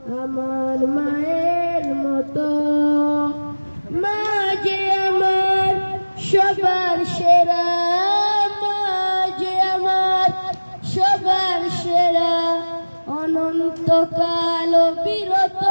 আমার মায়ের মতো। মা যে আমার সবার সেরা, মা যে আমার সবার সেরা, অনন্তকাল বিরত।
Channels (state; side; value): inverted; both; correlation -1.00